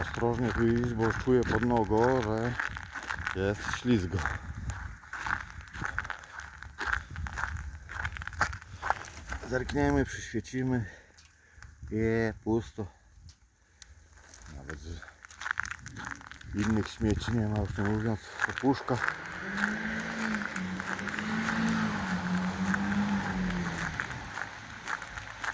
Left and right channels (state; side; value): identical; both; correlation 1.00